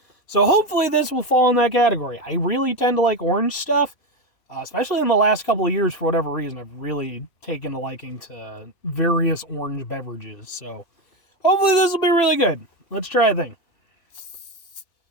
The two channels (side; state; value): right; late; 3.0 ms